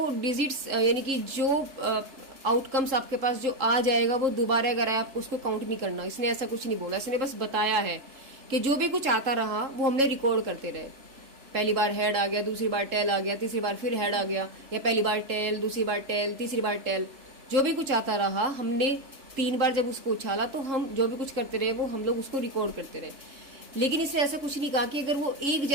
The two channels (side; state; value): left; late; 3.7 ms